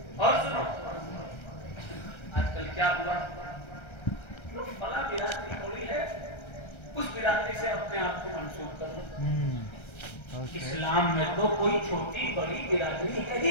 اور سنو, آج کل کیا ہوا, فلاں برادری ہوئی ہے, اس برادری سے اپنے آپ کو منسوب کرو. اسلام میں تو کوئی چھوٹی بڑی برادری ہے ہی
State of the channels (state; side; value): late; right; 1.3 ms